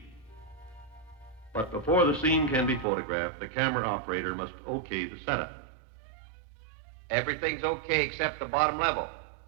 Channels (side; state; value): left; drops out; at 2.9 s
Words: But before the scene can be photographed, the camera operator must okay the setup. Everything's okay except the bottom level.